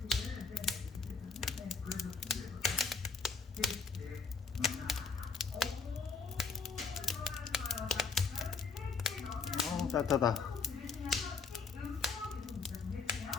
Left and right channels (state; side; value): quieter; right; 4.9 dB